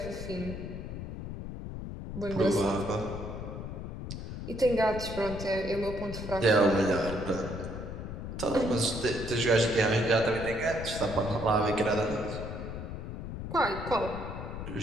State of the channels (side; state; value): left; noise; rumble, 7 dB below the sound